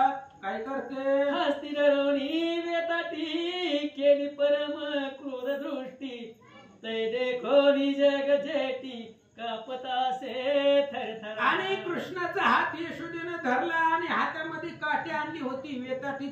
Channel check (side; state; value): both; identical; correlation 1.00